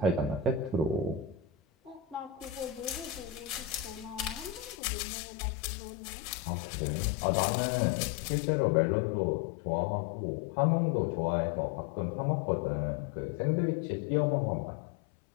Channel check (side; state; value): right; drops out; at 4.8 s